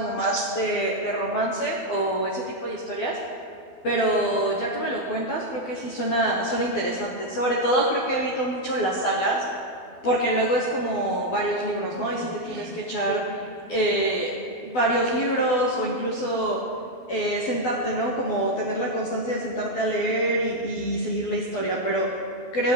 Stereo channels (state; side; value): late; right; 12 ms